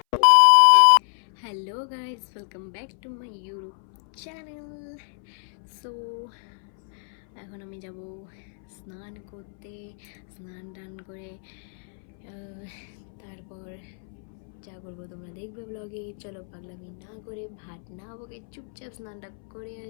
Hello guys, welcome back to my YouTube channel. So এখন আমি যাব স্নান করতে, স্নান টান করে তারপর যা করবো তোমরা দেখবে ব্লগে। চলো পাগলামি না করে, ভাত না বকে চুপচাপ স্নানটা করে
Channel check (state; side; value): silent; right; 60 dB below the other